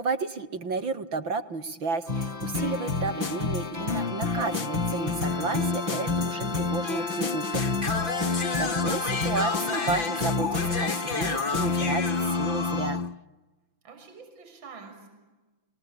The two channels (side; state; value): left; late; 5.9 ms